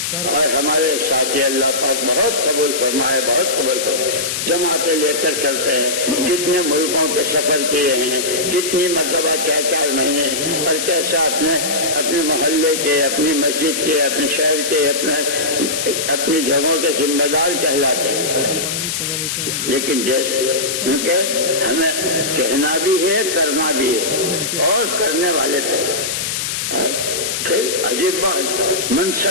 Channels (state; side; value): noise; left; hiss, 2 dB below the sound